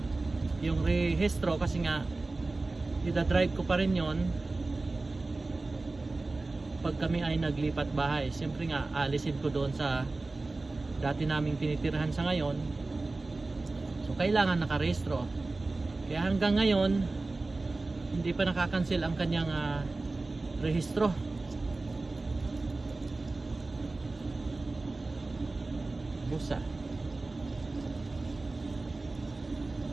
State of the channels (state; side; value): quieter; left; 3.3 dB